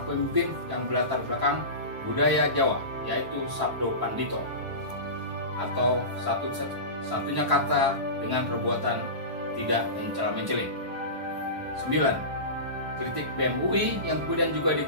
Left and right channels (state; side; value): late; left; 1.1 ms